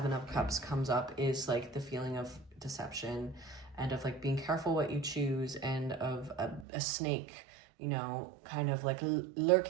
of Cups comes up is like the feeling of deception and of like being careful what you choose, and of a snake, you know, kind of like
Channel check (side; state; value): left; drops out; at 6.7 s